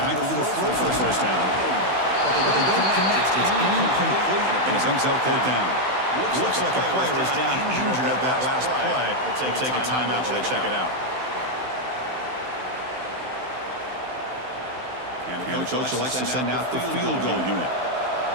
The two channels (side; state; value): left; late; 16 ms